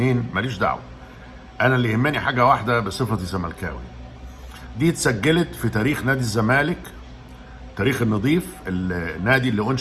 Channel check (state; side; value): identical; both; correlation 1.00